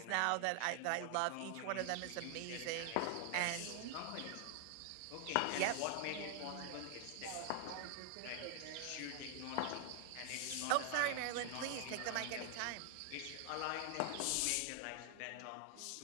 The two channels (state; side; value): different; both; correlation 0.00